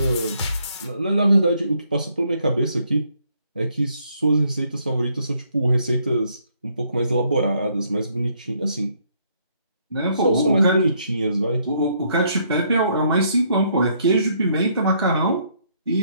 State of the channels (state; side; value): inverted; both; correlation -0.70